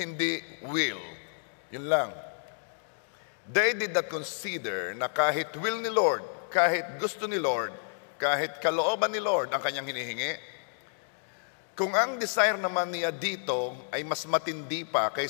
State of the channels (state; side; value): silent; right; digital silence